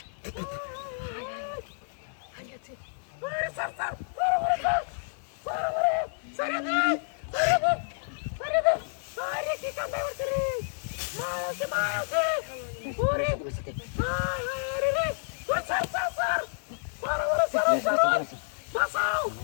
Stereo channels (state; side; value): silent; right; 58 dB below the other